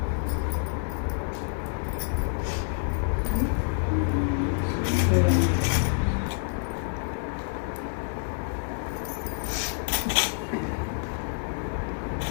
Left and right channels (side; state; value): right; silent; digital silence